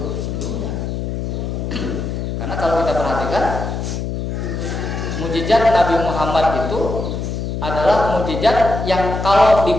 sebelumnya. Karena kalau kita perhatikan, mukjizat Nabi Muhammad itu adalah mukjizat yang kalau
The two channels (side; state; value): left; noise; hum, 3 dB below the sound